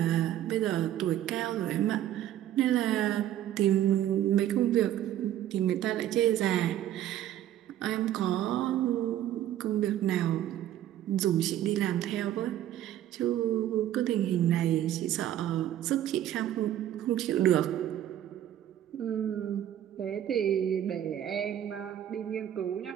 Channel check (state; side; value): quieter; left; 11.9 dB